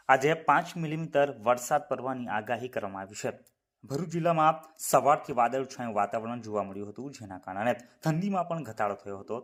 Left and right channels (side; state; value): both; identical; correlation 1.00